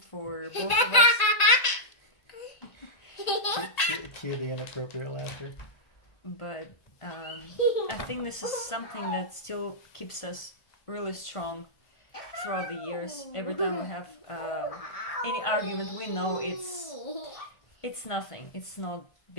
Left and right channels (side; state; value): right; late; 1.8 ms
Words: both of us. Cue the inappropriate laughter. But I think this is something that still keeps us really strong throughout the years. Every time we have any argument, we know it's nothing. It's not